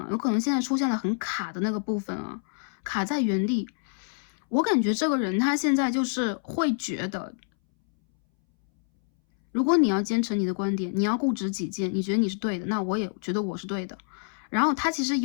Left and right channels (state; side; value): silent; right; 60 dB below the other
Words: 有可能现在出现了很卡的那个部分啊，卡在原地。我感觉这个人他现在就是会觉得，如果你要坚持你的观点，你要固执己见，你觉得你是对的，那我也觉得我是对的。然后他其实